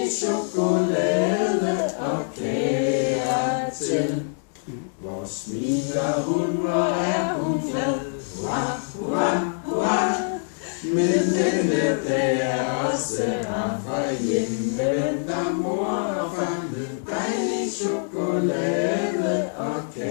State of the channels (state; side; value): silent; right; digital silence